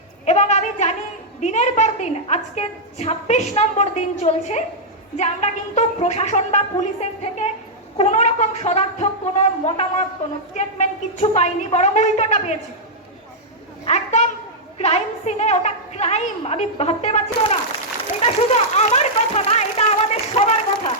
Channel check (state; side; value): normal; both; correlation -0.07